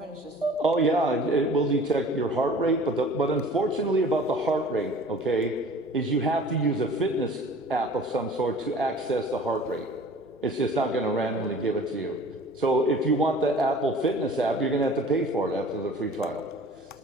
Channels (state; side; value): normal; both; correlation 0.46